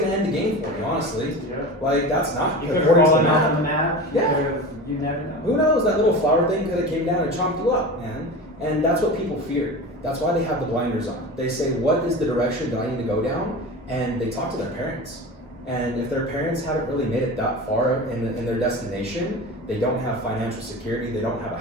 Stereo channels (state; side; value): normal; both; correlation 0.30